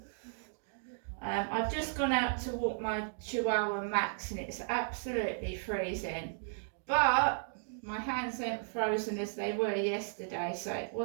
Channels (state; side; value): silent; left; digital silence